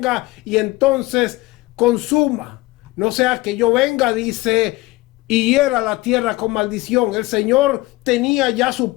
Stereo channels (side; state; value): right; quieter; 20.4 dB